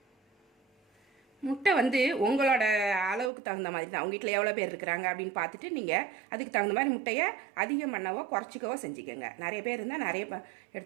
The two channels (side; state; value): left; drops out; at 3.3 s